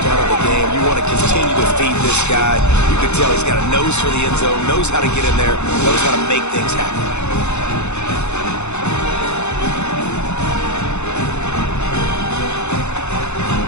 of the game. You want to continue to feed this guy. You can tell he's got a nose for the end zone, knows how to get in there, knows how to make things happen.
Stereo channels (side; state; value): right; late; 0.82 ms